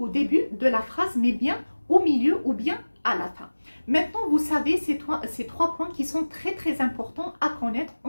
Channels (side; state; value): both; inverted; correlation -1.00